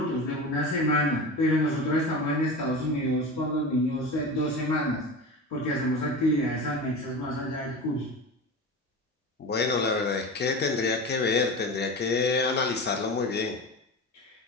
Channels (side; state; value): both; normal; correlation 0.28